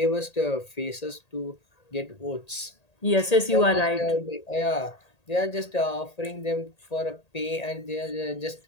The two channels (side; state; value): right; late; 1.8 ms